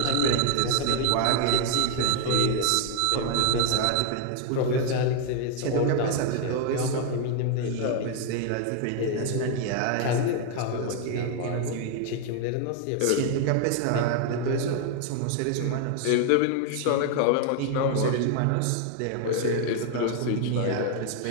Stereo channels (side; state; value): both; different; correlation 0.00